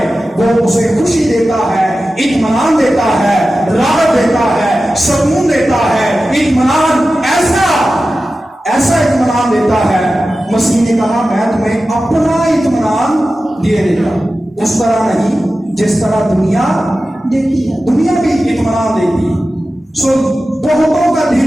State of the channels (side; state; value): both; normal; correlation 0.94